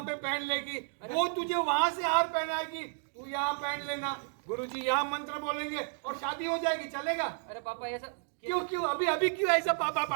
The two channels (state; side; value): silent; left; 56 dB below the other